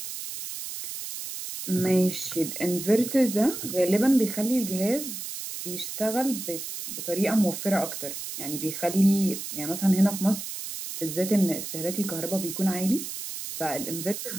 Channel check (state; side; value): noise; right; hiss, 7 dB below the sound